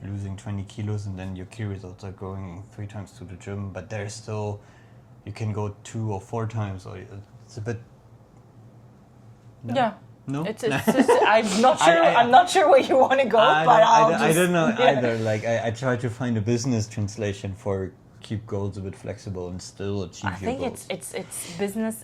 losing 20 kilos, and then your key results are going 3 times to the gym, but there's still, you can go 2 or 4 times, or it's a bit. No? Yeah. No, It's I'm not sure. I'm not sure where you want to go, I don't know either. Like, I try to find a business translation for keep goals a bit flexible and still achieve your goals. I think it's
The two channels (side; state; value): both; identical; correlation 1.00